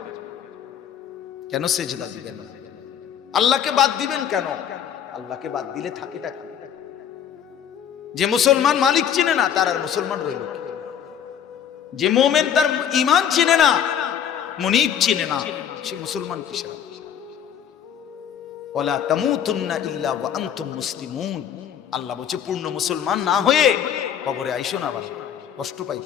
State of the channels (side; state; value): right; quieter; 8.9 dB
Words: কেন সেজদা দিবেন, আল্লাহকে বাদ দিবেন কেন? আল্লাহকে বাদ দিলে থাকেটা কি? যে মুসলমান মালিক চিনে না, তার আর মুসলমান রইল কি? যে মুমিন তার ঈমান চিনে না, মুনিব চিনে না, সে মুসলমান কিসের? ওয়ালা তামুতুন্না ইল্লা ওয়া আনতুম মুসলিমুন। আল্লাহ বলছে, পূর্ণ মুসলমান না হয়ে কবরে আইসো না, বাবা, কষ্ট পাই,